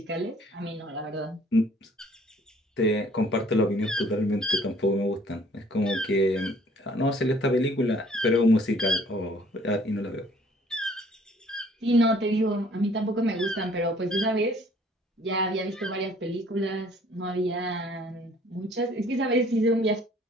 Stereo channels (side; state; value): both; normal; correlation 0.58